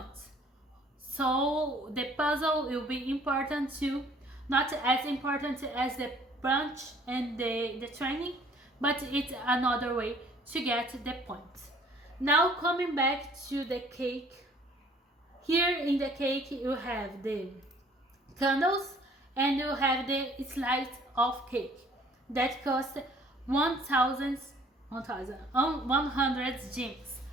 So the puzzle will be important too, not as important as the brunch and the training, but it's another way to get the points. Now coming back to the cake, here in the cake you have the candles and you have the slice of cake that cost 100 gems.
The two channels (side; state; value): both; normal; correlation 0.56